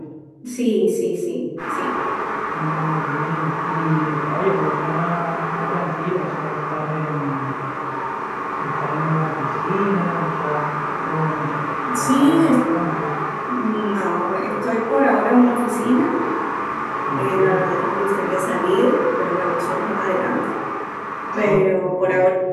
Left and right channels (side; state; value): both; identical; correlation 1.00